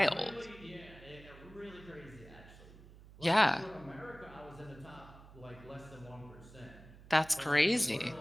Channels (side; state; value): right; noise; hum, 19 dB below the sound